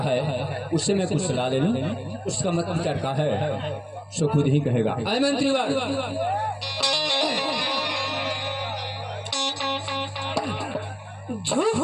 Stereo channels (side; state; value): both; identical; correlation 1.00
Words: है, उससे मैं कुछ सलाह ले लूं, उसका मत विचार का है सो खुद ही कहेगा। आए मंत्री वाल,